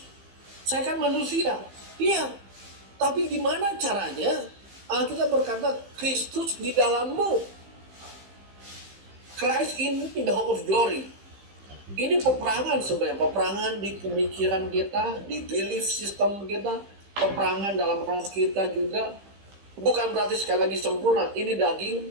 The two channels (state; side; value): late; left; 15 ms